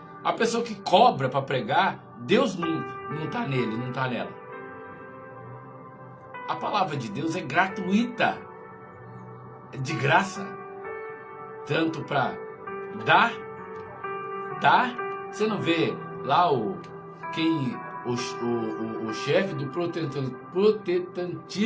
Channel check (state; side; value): identical; both; correlation 1.00